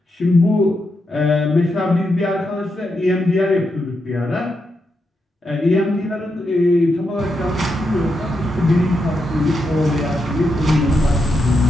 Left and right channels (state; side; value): normal; both; correlation 0.84